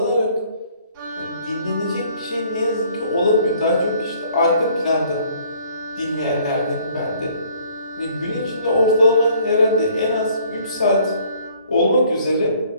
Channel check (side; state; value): both; inverted; correlation -0.59